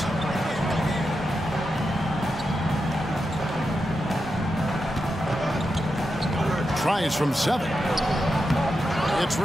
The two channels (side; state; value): both; normal; correlation 0.87